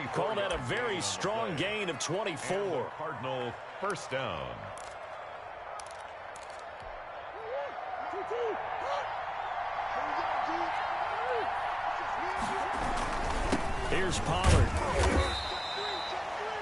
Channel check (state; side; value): identical; both; correlation 1.00